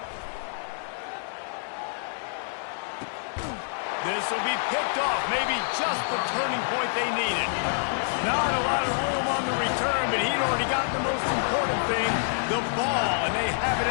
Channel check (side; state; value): right; silent; 60 dB below the other